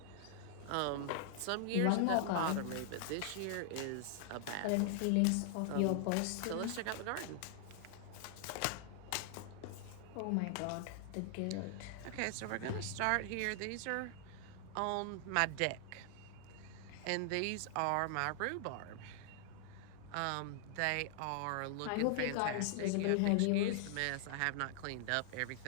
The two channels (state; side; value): different; both; correlation -0.01